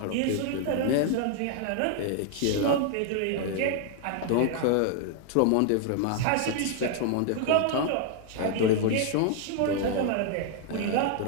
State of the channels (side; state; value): both; different; correlation 0.00